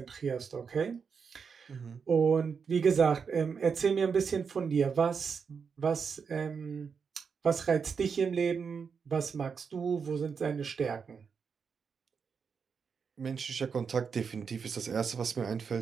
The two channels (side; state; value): left; quieter; 6.0 dB